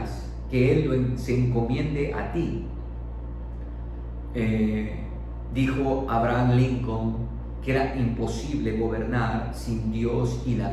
que Él se encomiende a ti. Dijo Abraham Lincoln que era imposible gobernar sin Dios y la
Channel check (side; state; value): both; identical; correlation 1.00